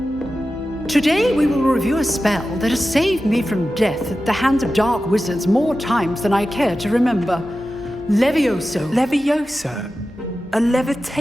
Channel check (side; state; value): both; normal; correlation 0.93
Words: Today we will review a spell that has saved me from death at the hands of dark wizards more times than I care to remember. Levioso. Levioso? A